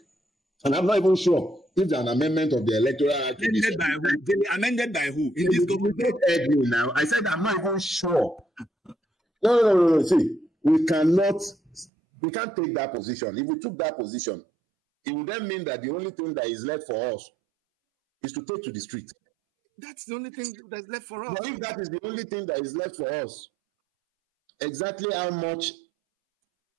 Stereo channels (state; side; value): drops out; left; at 11.9 s